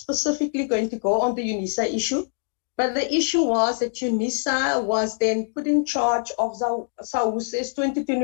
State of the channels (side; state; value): right; silent; digital silence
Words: going to go on the UNISA issue. But the issue was that UNISA was then put in charge of SAUSE's